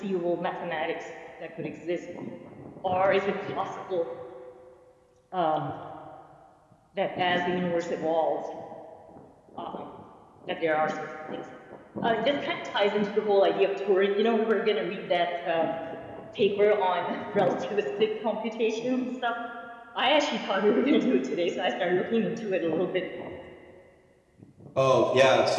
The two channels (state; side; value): identical; both; correlation 1.00